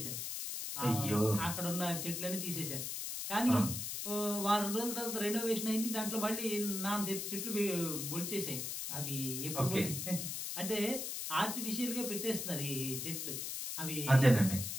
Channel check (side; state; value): left; noise; hiss, 4 dB below the sound